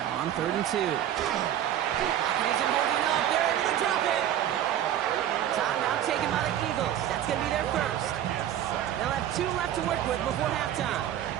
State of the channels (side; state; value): left; quieter; 11.2 dB